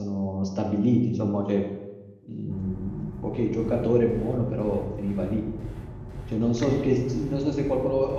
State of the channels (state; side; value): identical; both; correlation 1.00